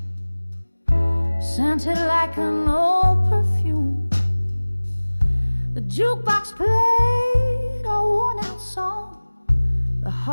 scented like an old perfume. The jukebox played a worn-out song, the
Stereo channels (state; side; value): inverted; both; correlation -1.00